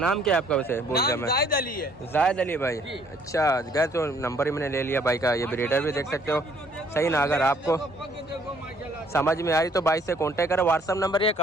क्या है आपका वैसे? बोल दिया नाम मैं। जाहिद अली है। जाहिद अली भाई। जी। अच्छा, गए तो नंबर ही मैंने ले लिया भाई का। ये ब्रीडर भी देख सकते हो। सही ना, अगर आपको समझ में आई तो भाई से कांटेक्ट करो। व्हाट्सएप नंबर ये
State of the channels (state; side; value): normal; both; correlation 0.62